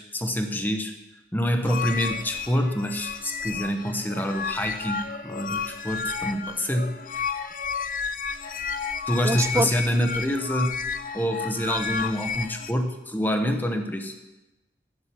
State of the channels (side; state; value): both; normal; correlation 0.63